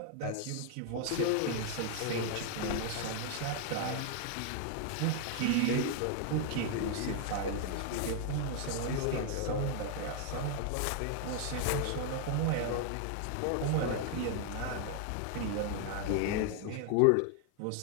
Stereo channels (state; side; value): different; both; correlation 0.00